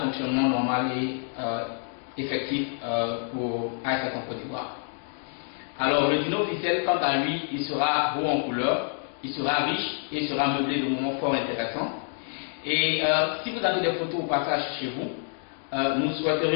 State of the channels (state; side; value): silent; right; 55 dB below the other